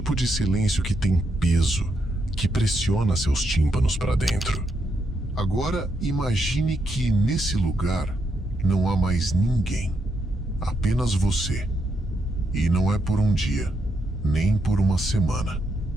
de silêncio que tem peso, que pressiona seus tímpanos para dentro. Agora, imagine que nesse lugar não há mais ninguém. Apenas você. E não é por um dia, nem por uma semana.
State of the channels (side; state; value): both; normal; correlation 0.79